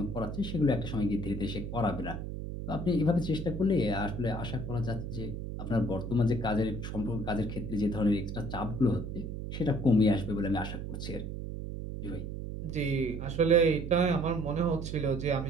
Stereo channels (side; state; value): right; noise; hum, 6 dB below the sound